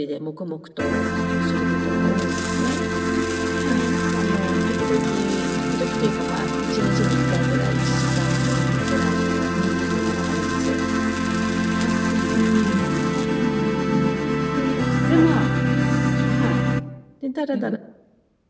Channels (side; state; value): both; identical; correlation 1.00